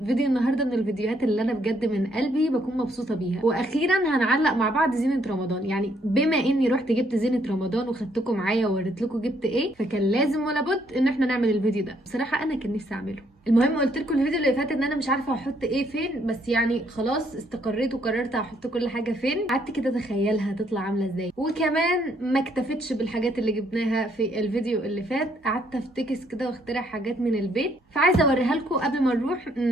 فيديو النهارده من الفيديوهات اللي انا بجد من قلبي بكون مبسوطه بيها، واخيرا هنعلق مع بعض زينه رمضان. يعني بما اني رحت جبت زينه رمضان وخدتكم معايا ووريت لكم جبت ايه، فكان لازم ولا بد ان احنا نعمل الفيديو ده. بصراحه انا كان نفسي اعمله. المهم قلت لكم الفيديو اللي فات ان انا مش عارفه احط ايه فين، بس يعني خلاص استقريت وقررت احط كل حاجه فين. قعدت كده اتخيلها هتطلع عامله ازاي، وكمان ما اكتفتش بالحاجات اللي جبناها في الفيديو اللي فات، قعدت افتكس كده واخترع حاجات من البيت، فعايزه اوريها لكم قبل ما نروح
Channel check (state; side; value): normal; both; correlation 0.69